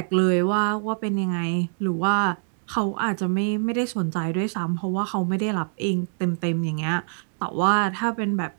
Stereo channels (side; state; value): left; silent; 59 dB below the other